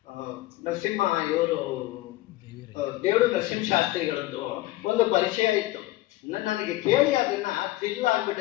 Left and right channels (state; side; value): quieter; right; 17.5 dB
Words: ನರಸಿಂಹ, ಇವರು ದೇವರು ನರಸಿಂಹಶಾಸ್ತ್ರಿಗಳದ್ದು ಒಂದು ಪರಿಚಯ ಇತ್ತು. ನನಗೆ ಕೇಳಿ ಅದನ್ನ ಥ್ರಿಲ್